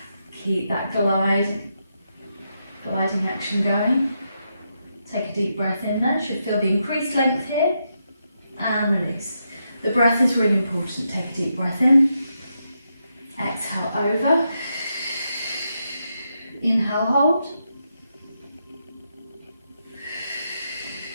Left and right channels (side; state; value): both; inverted; correlation -0.83